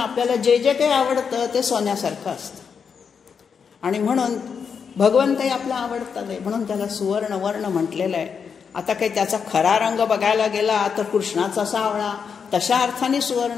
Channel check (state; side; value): quieter; right; 6.4 dB